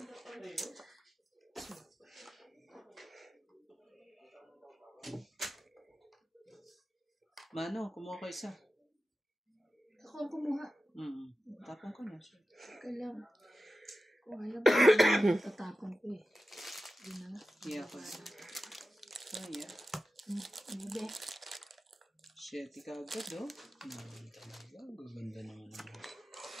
Mano, kumuha ka isa. Ako ang kumuha. Tapong ko na. Kailang. Kung alam ko, tatapon ko eh. Yun na nga. Iya ko. Kaya. Ano ba? Shit, kagad, oh. Talaga. Gaganda naman ang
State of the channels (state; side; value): normal; both; correlation 0.93